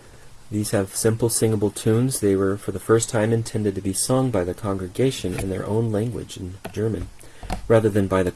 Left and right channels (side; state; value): both; identical; correlation 1.00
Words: These have simple singable tunes. They were for the first time intended to be sung by the congregation in their own language, in German, rather than by the